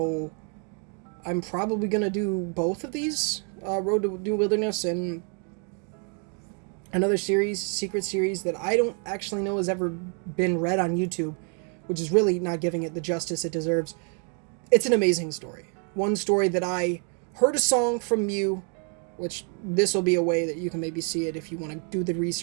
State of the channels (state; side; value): quieter; left; 39.9 dB